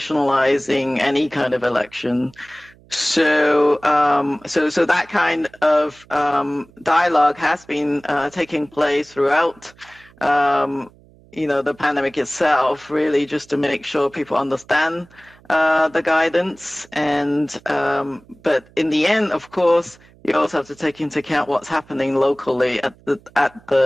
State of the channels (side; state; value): right; noise; hum, 27 dB below the sound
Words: any kind of election. So that kind of dialogue has been taking place throughout, the pandemic itself, really just to make sure people understand the guidance. And but in the end, of course, you also have to take into account what's happening locally at